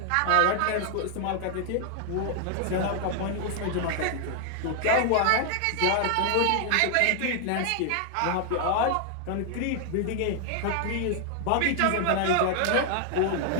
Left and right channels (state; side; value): different; both; correlation 0.00